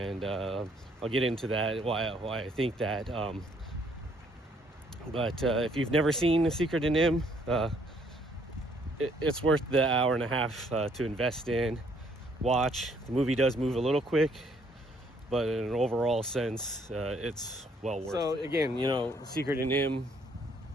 I'll get into that, why I think that. But if you've never seen The Secret of Nimh, it's worth the hour and a half to invest in. Watch. The movie does move a little quick, but in an overall sense, it's well worth it. So again, you know, Secret of Nimh,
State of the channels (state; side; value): normal; both; correlation 0.65